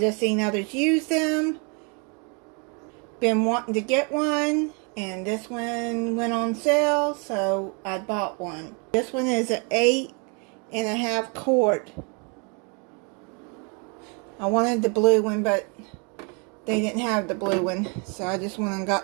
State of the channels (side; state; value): left; quieter; 35.0 dB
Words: seen others use them. Been wanting to get one, and this one went on sale, so I bought one. This one is an 8.5 quart. I wanted the blue one, but they didn't have the blue one, so I just went and